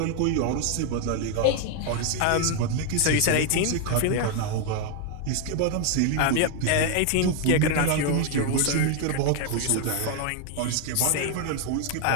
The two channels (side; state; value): both; different; correlation 0.01